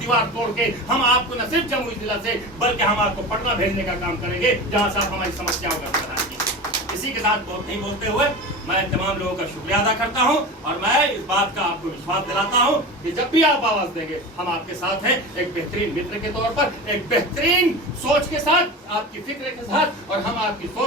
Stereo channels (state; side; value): normal; both; correlation 0.29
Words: तोड़ के हम आपको न सिर्फ जमुई जिला से, बल्कि हम आपको पटना भेजने का काम करेंगे, जहां से आप हमारी समस्याओं का समाधान कीजिए। इसी के साथ बहुत नहीं बोलते हुए मैं तमाम लोगों का शुक्रिया अदा करता हूं, और मैं इस बात का आपको विश्वास दिलाता हूं कि जब भी आप आवाज देंगे हम आपके साथ हैं, एक बेहतरीन मित्र के तौर पर, एक बेहतरीन सोच के साथ, आपकी फिक्र के साथ, और हम आपकी